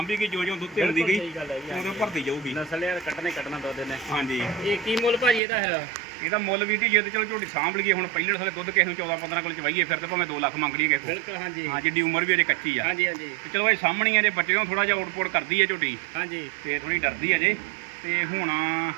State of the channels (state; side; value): drops out; left; at 5.4 s